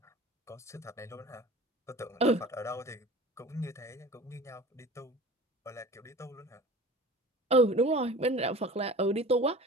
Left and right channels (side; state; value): both; normal; correlation 0.40